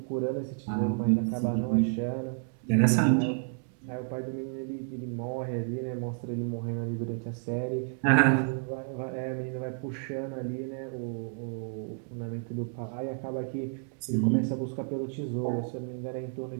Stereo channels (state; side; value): silent; left; 57 dB below the other